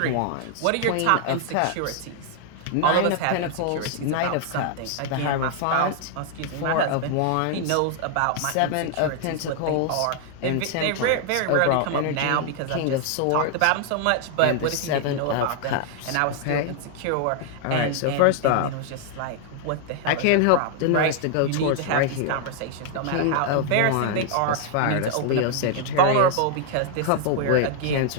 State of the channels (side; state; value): both; different; correlation 0.00